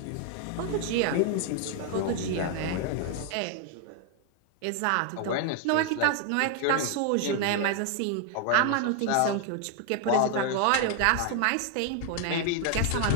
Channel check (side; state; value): both; different; correlation 0.00